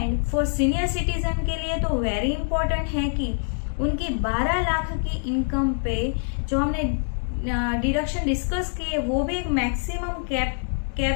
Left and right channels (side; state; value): right; silent; 62 dB below the other